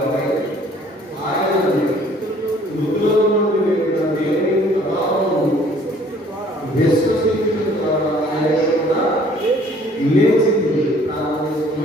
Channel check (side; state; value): both; normal; correlation 0.56